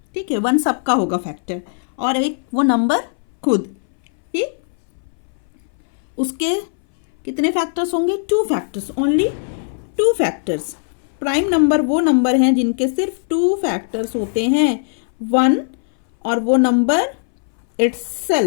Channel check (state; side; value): silent; right; 62 dB below the other